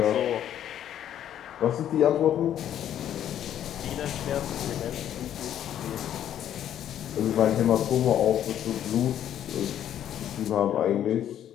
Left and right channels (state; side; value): quieter; right; 10.6 dB